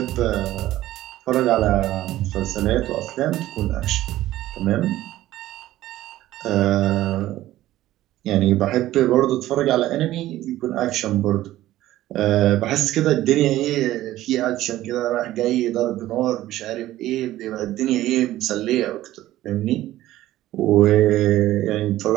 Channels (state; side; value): quieter; left; 14.9 dB